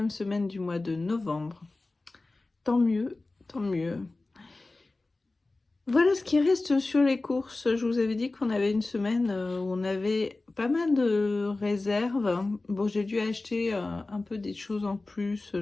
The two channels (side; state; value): right; quieter; 3.2 dB